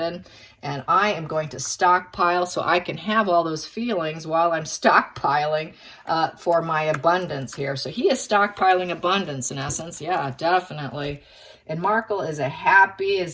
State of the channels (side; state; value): both; identical; correlation 1.00